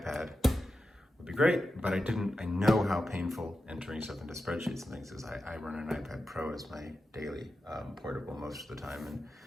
would be great, but I know how painful entering stuff into spreadsheets and things is. I run an iPad Pro as my daily portable most of the time, and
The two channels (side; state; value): both; normal; correlation 0.91